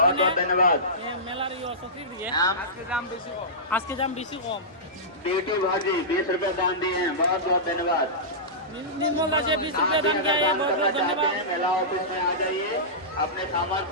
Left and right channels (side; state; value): both; normal; correlation -0.16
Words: बहुत धन्यवाद। মেলার সক্রিয় দিয়ে আজকে দাম বেশি কম। बेटी भाजी 20 रुपए दान दिए हैं, बहुत बहुत धन्यवाद। निर्मल राजे 20 रुपए दान किया है, बहुत बहुत धन्यवाद। मेला ऑफिस में आ जाइए, अपने सामान